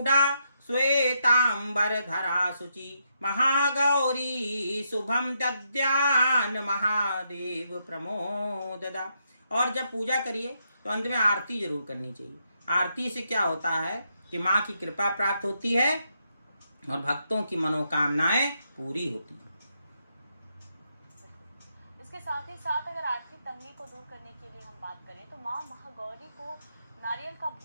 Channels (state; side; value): inverted; both; correlation -0.79